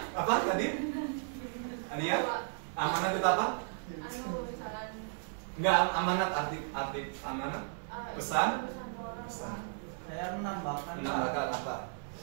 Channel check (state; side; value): silent; left; 55 dB below the other